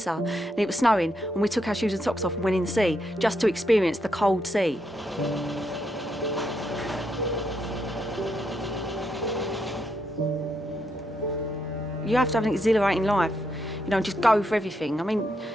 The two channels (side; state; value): both; normal; correlation 0.79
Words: and it was snowing, and we took our shoes and socks off and went in the sea just to experience the cold sea. You have to have an exhilarating life, you know, and just go for everything. I mean,